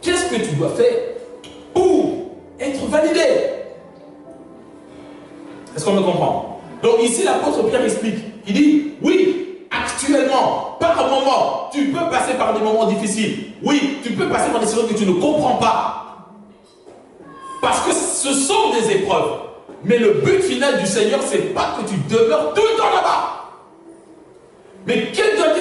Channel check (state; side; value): identical; both; correlation 1.00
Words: qu'est-ce que tu dois faire pour être validé. Est-ce qu'on me comprend? Donc ici, l'apôtre Pierre explique. Il dit, oui, actuellement, par moment, tu peux passer par des moments difficiles. Oui, tu peux passer par des situations que tu ne comprends pas. Parce que ce sont des épreuves. Mais le but final du Seigneur, ce n'est pas que tu demeures tout le temps là-bas. Mais quelle doit